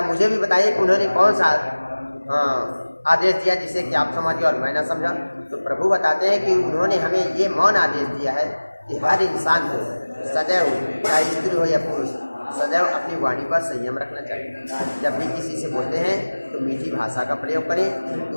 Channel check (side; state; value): both; inverted; correlation -1.00